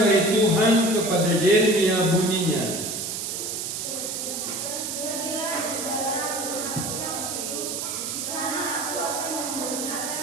dari Tuhan kepada Yeremia bunyinya,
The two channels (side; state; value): right; noise; hiss, 4 dB below the sound